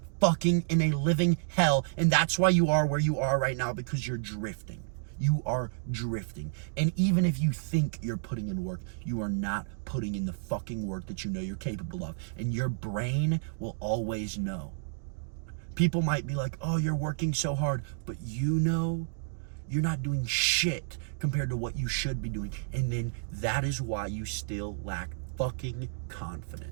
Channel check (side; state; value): left; silent; digital silence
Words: fucking in a living hell. And that's why you are where you are right now, because you're drifting. You are drifting. And even if you think you're putting in work, you are not putting in the fucking work that you know you're capable of. And your brain will always know. People might be like, oh, you're working so hard, but you know you're not doing shit compared to what you should be doing. And then that is why you still lack fucking